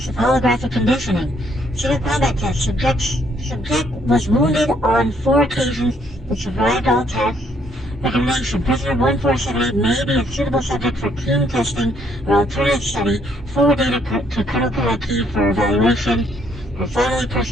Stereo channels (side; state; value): both; normal; correlation 0.69